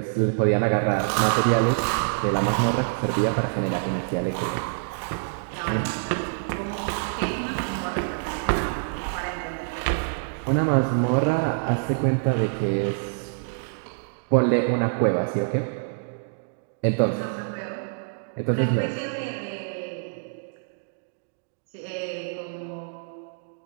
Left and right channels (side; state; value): left; silent; digital silence